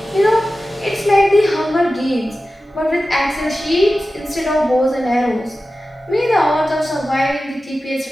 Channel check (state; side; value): normal; both; correlation 0.94